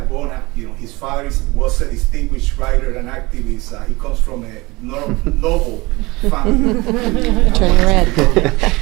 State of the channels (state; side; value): quieter; left; 22.6 dB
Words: His father was a distinguished writer and activist. He comes from a noble family. Turning red.